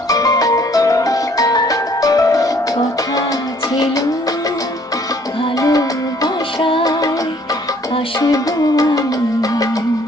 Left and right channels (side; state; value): both; normal; correlation 0.60